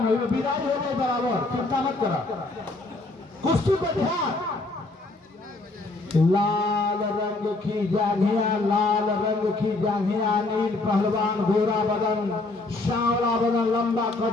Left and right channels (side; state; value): right; quieter; 3.1 dB